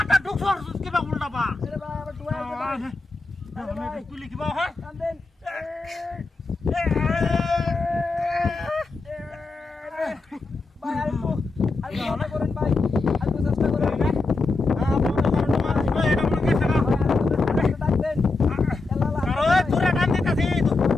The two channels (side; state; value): right; quieter; 3.6 dB